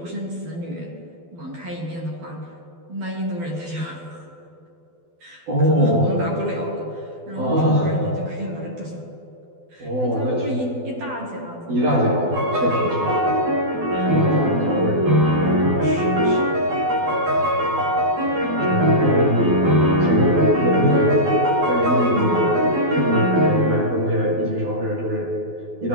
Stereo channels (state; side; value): late; left; 12 ms